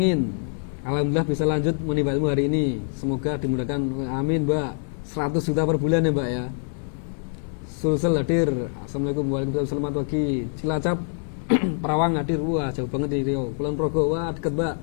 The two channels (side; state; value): right; silent; 62 dB below the other